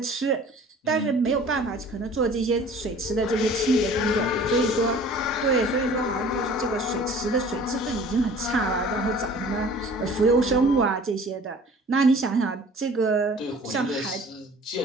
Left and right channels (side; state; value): both; normal; correlation 0.48